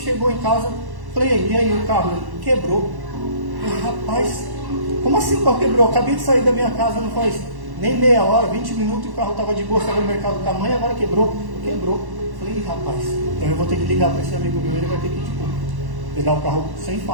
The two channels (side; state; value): left; late; 1.1 ms